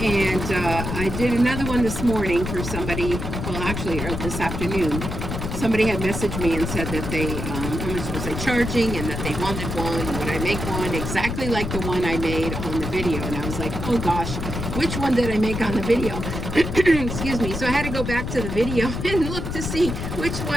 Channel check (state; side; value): noise; left; rumble, 4 dB below the sound